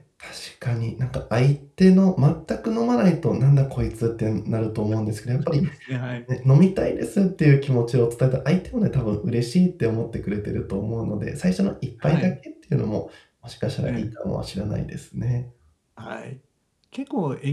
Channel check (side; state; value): both; identical; correlation 1.00